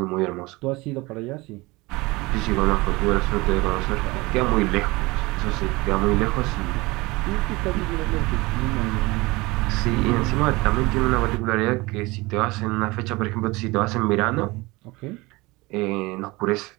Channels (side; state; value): left; quieter; 22.6 dB